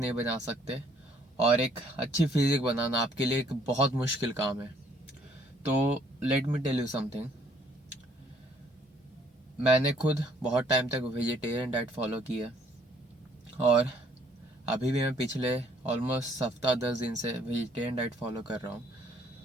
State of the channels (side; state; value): both; normal; correlation 0.63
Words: बना सकते। और एक अच्छी फिजिक बनाना आपके लिए एक बहुत मुश्किल काम है। तो let me tell you something. मैंने खुद बहुत टाइम तक वेजिटेरियन डाइट फॉलो की है और अभी भी मैं पिछले ऑलमोस्ट हफ्ता 10 दिन से वेजिटेरियन डाइट फॉलो कर रहा हूँ।